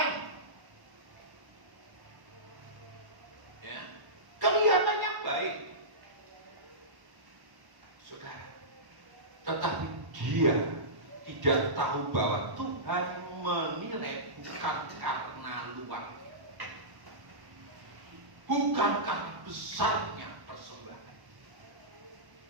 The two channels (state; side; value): late; left; 1.1 ms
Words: Ya, kelihatannya baik, saudara. Tetapi dia tidak tahu bahwa Tuhan menilai bukan karena luarnya, bukan karena besarnya persembahan.